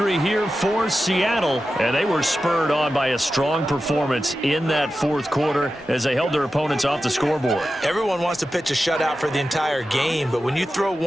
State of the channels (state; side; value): normal; both; correlation 0.92